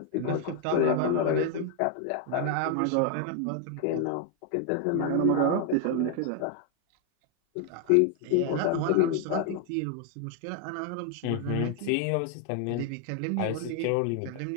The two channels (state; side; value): different; both; correlation 0.00